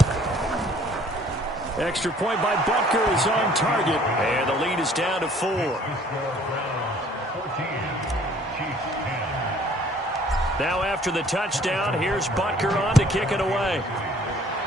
Extra point by Butker is on target. And the lead is down to 4. Now after the touchdown, here's Butker on to kick it away.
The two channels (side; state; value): both; normal; correlation 0.56